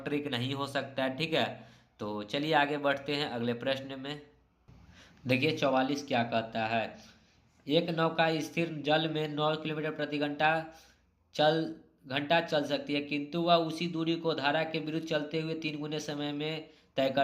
ट्रिक नहीं हो सकता है, ठीक है। तो चलिए आगे बढ़ते हैं अगले प्रश्न में। देखिए 44 क्या कहता है, एक नौका स्थिर जल में 9 किलोमीटर प्रति घंटा चल सकती है, किंतु वह उसी दूरी को धारा के विरुद्ध चलते हुए 3 गुने समय में तय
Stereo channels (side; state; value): both; identical; correlation 1.00